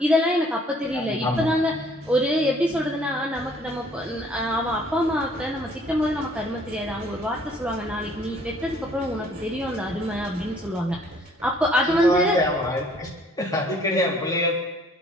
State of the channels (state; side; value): normal; both; correlation 0.59